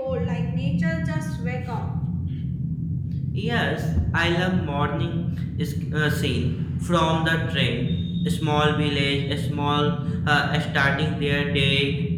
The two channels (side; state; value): both; identical; correlation 1.00